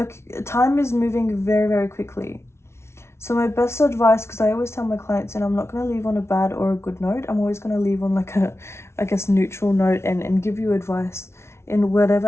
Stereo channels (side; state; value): right; late; 0.13 ms